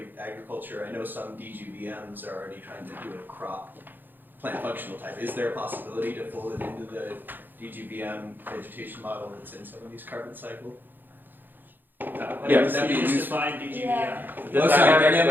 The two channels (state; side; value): late; left; 0.091 ms